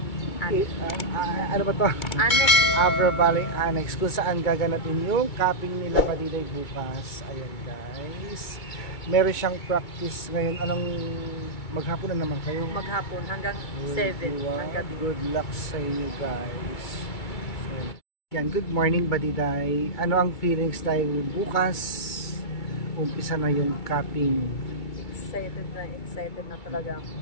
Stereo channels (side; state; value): right; late; 2.2 ms